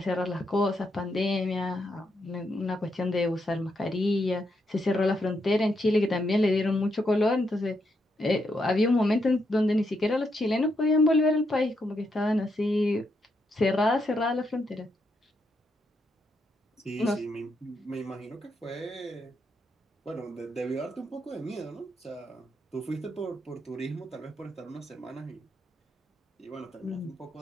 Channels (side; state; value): both; normal; correlation 0.80